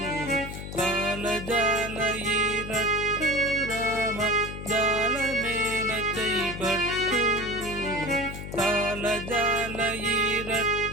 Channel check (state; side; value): noise; left; hum, 9 dB below the sound